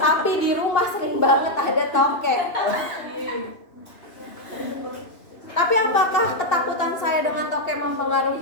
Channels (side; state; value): right; late; 2.9 ms